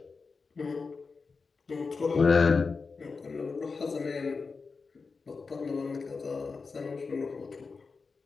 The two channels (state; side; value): quieter; right; 4.6 dB